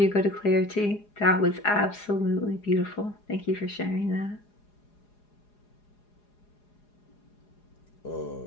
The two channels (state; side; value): late; right; 4.8 ms